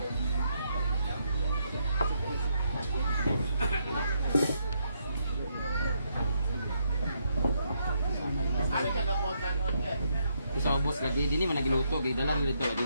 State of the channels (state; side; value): inverted; both; correlation -0.77